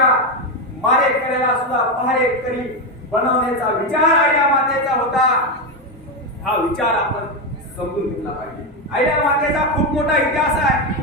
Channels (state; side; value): normal; both; correlation 0.10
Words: मारेकऱ्याला सुद्धा पहारेकरी बनवण्याचा विचार अहिल्या मातेचा होता. हा विचार आपण समजून घेतला पाहिजे. अहिल्या मातेचा खूप मोठा इतिहास आहे,